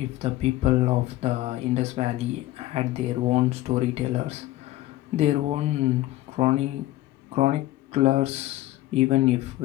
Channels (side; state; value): right; quieter; 16.2 dB